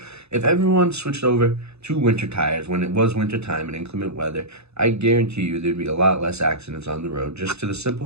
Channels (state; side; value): late; left; 0.80 ms